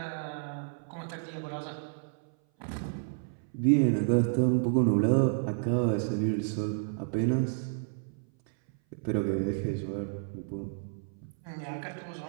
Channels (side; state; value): left; silent; 57 dB below the other